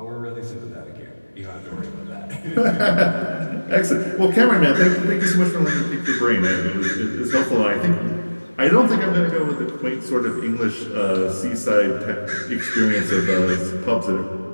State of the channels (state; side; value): inverted; both; correlation -1.00